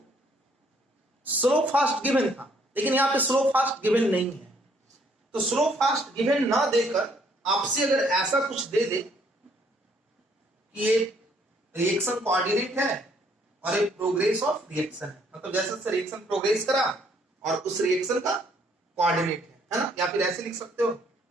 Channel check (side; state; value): both; normal; correlation 0.66